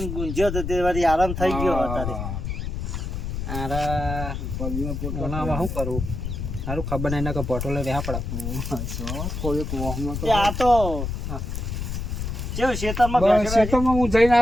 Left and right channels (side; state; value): left; noise; rumble, 4 dB below the sound